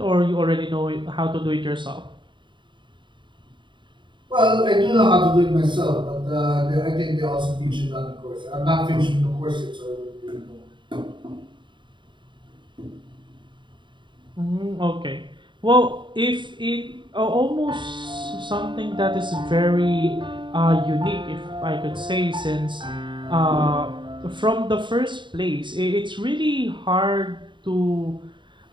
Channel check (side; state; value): left; late; 0.23 ms